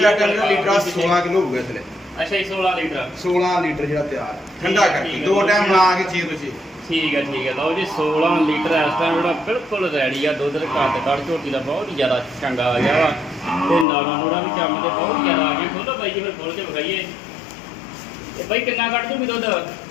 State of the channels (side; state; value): right; drops out; at 13.9 s